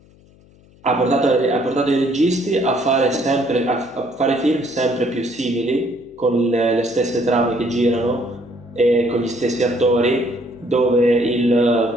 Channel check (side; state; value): left; noise; hum, 28 dB below the sound